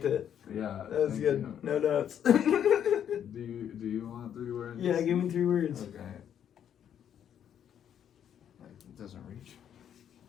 it. yeah, That was thank good. you. No notes. Do you want 3 words? Yeah, give me 3 words. Okay. It doesn't reach.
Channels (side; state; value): right; quieter; 9.3 dB